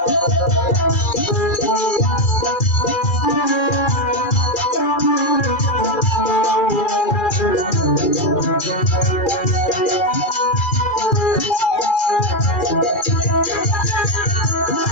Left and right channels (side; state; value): right; late; 2.4 ms